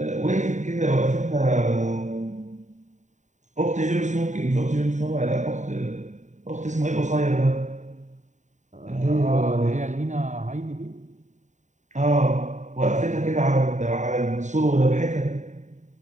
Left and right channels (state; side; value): late; left; 0.35 ms